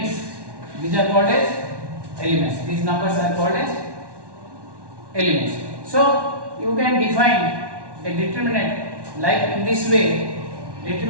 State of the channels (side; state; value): left; late; 1.1 ms